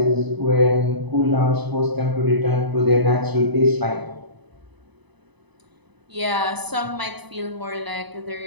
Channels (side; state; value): left; late; 1.0 ms